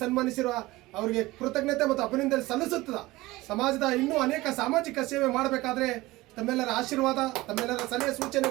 ಸನ್ಮಾನಿಸಿರುವ ಅವರಿಗೆ ಕೃತಜ್ಞತೆ ಮತ್ತು ಅಭಿನಂದನೆ ಸಲ್ಲಿಸುತ್ತದೆ. ಸಮಾಜದ ಇನ್ನೂ ಅನೇಕ ಸಾಮಾಜಿಕ ಸೇವೆ ಮಾಡಬೇಕಾದ್ರೆ ತಮ್ಮೆಲ್ಲರ ಆಶೀರ್ವಾದ, ತಮ್ಮೆಲ್ಲರ ಸಲಹೆ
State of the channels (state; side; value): quieter; left; 19.4 dB